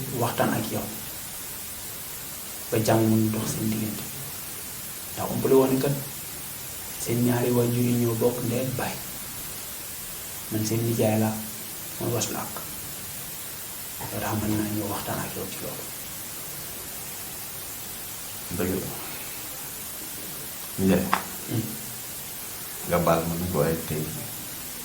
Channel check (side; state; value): both; identical; correlation 1.00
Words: waxtaan ak yow ba jàmm mun dox seen diggante ndax umpale woon kat seen ñaari waajur yi ñoo bokk ndey ak baay man seen nijaay laa mooy waslu ak loolu tax mën naa ñëw waxtaan ak yow ci loolu. dëgg la Ndiaye nga baal ma nag waaye tey